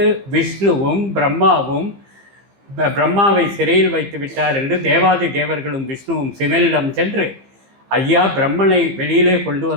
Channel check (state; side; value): late; left; 15 ms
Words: விஷ்ணுவும் பிரம்மாவும் பிரம்மாவை சிறையில் வைத்து விட்டார் என்று தேவாதி தேவர்களும் விஷ்ணுவும் சிவனிடம் சென்று, ஐயா, பிரம்மனை வெளியிலே கொண்டு